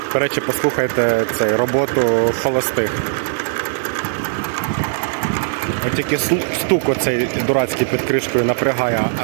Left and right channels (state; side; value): silent; left; 65 dB below the other